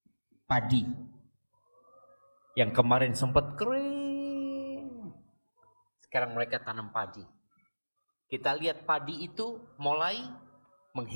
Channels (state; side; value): inverted; both; correlation -1.00